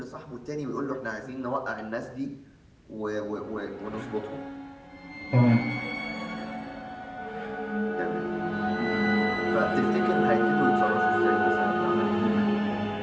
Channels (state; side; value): identical; both; correlation 1.00